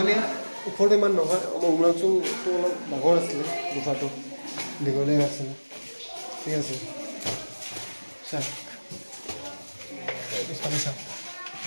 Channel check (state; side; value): inverted; both; correlation -1.00